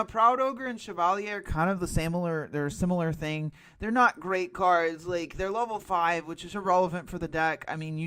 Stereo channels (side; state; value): both; identical; correlation 1.00